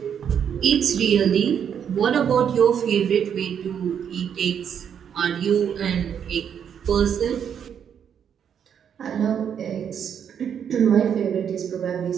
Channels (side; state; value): left; quieter; 8.2 dB